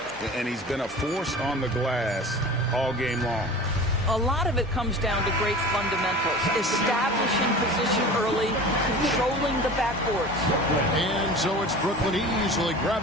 And he's been a force on the glass all game long. A lot of it comes down to great fundamentals. Establishing position early, controlling the backboards. And so it's Brooklyn easily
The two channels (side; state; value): both; normal; correlation 0.37